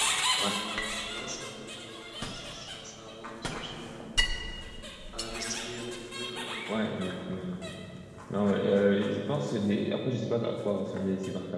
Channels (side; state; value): both; identical; correlation 1.00